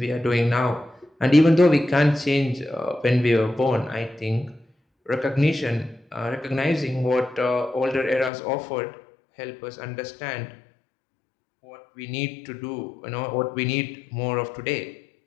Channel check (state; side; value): drops out; right; at 8.3 s